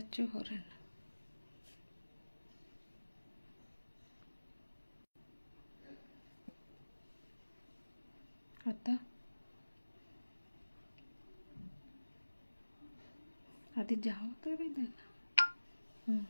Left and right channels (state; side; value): inverted; both; correlation -1.00